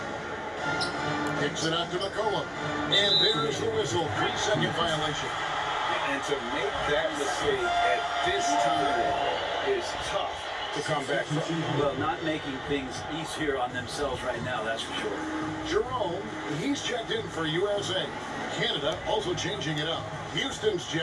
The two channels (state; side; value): identical; both; correlation 1.00